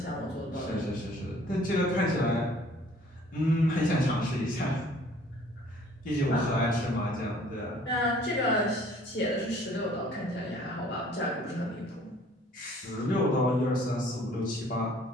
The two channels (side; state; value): both; normal; correlation 0.55